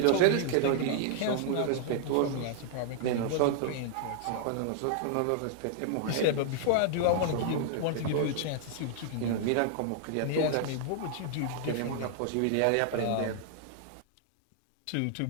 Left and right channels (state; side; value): different; both; correlation -0.01